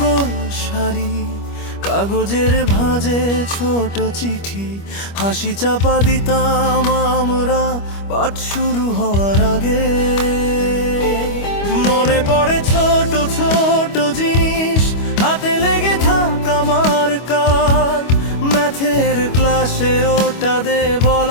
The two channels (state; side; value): late; right; 25 ms